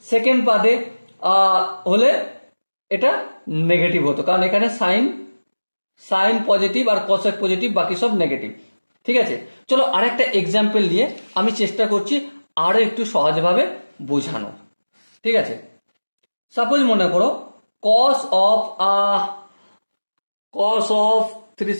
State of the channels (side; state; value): both; inverted; correlation -1.00